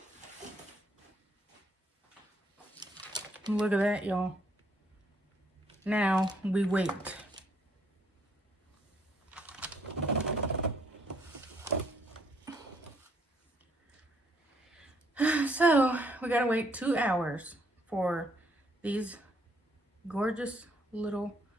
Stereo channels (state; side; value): normal; both; correlation 0.68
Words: Look at that, y'all. Now we wait. So we gotta wait 2 hours for these gorgeous little